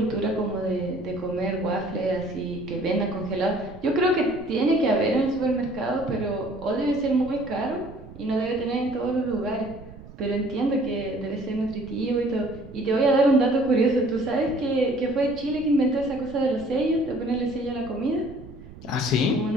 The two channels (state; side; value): noise; right; rumble, 17 dB below the sound